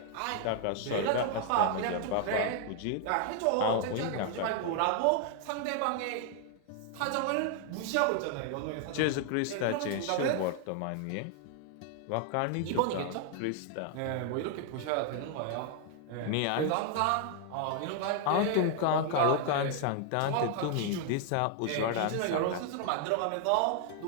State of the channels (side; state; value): both; different; correlation 0.00